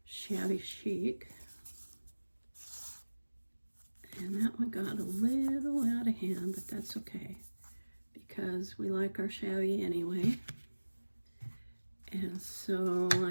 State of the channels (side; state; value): both; inverted; correlation -1.00